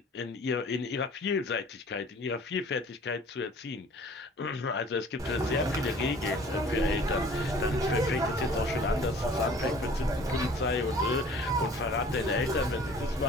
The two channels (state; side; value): normal; both; correlation 0.50